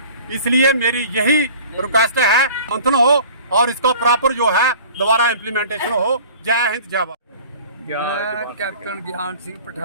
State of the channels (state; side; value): inverted; both; correlation -0.45